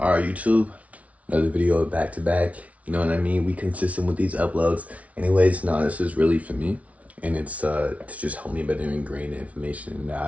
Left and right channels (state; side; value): late; left; 0.067 ms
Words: YouTube, another video back to back. You know what I mean? We consistent with these uploads. Anyways, no, this is really for me. And it's to just help me better ingrain the information that